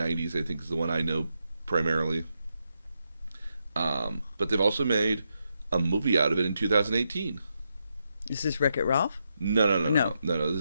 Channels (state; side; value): inverted; both; correlation -0.84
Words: I think is the one I know primarily. But they've also made a movie out of it in 2018. Is this Wreck-It Ralph? No.